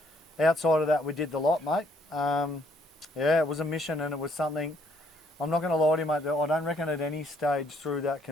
Outside of that, we did the lot, mate. It was a mission and it was something. I'm not going to lie to you, mate. I don't reckon at any stage through that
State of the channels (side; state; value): both; normal; correlation 0.67